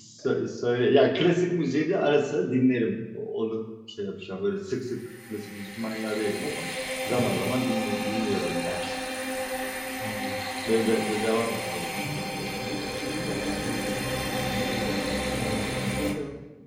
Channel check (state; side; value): identical; both; correlation 1.00